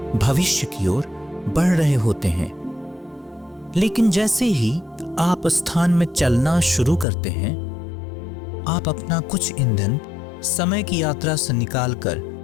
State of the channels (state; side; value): drops out; right; at 7.1 s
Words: भविष्य की ओर बढ़ रहे होते हैं। लेकिन जैसे ही आप स्थान में चलना शुरू करते हैं, आप अपना कुछ ईंधन समय की यात्रा से निकालकर